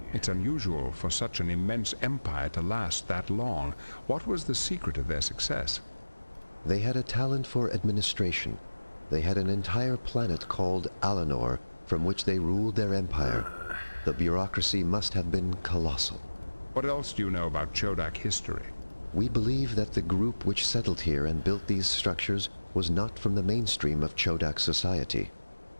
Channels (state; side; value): inverted; both; correlation -1.00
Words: It's unusual for such an immense empire to last that long. What was the secret of their success? They had a talent for administration. They had an entire planet called Alanor, from which they ruled their empire. The bureaucracy must have been colossal. What else do you know about Chodak history? We believe that the group which settled here and built these structures was not from the mainstream of Chodak society.